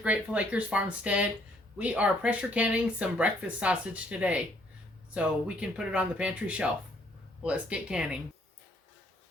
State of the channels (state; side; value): normal; both; correlation 0.66